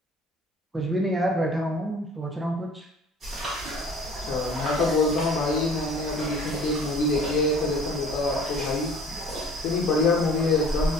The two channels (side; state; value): both; normal; correlation 0.49